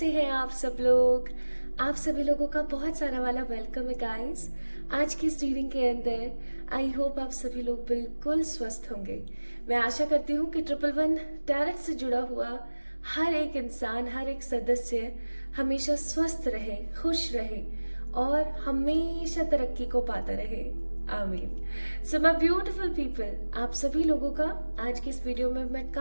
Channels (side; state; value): both; inverted; correlation -1.00